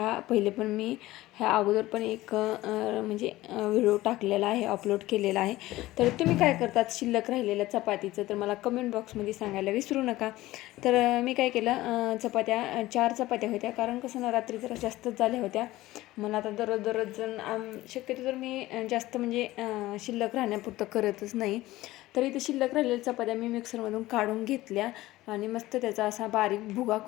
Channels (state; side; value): quieter; right; 17.3 dB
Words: पहिले पण मी ह्या अगोदर पण एक म्हणजे व्हिडिओ टाकलेला आहे, अपलोड केलेला आहे. तर तुम्ही काय करतात शिल्लक राहिलेल्या चपातीचं तर मला कमेंट बॉक्समध्ये सांगायला विसरू नका. तर मी काय केलं, चपात्या 4 चपात्या होत्या, कारण कसं ना रात्री जरा जास्तच झाल्या होत्या. मला आता दररोज शक्यतो तर मी जास्त म्हणजे शिल्लक राहण्यापुरतं करतच नाही. तर इथं शिल्लक राहिलेल्या चपात्या मी मिक्सरमधून काढून घेतल्या आणि मस्त त्याचा असा बारीक भुगा